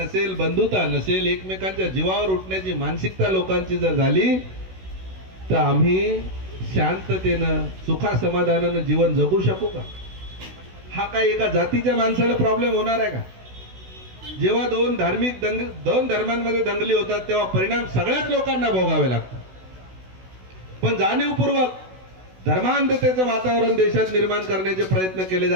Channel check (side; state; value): left; late; 16 ms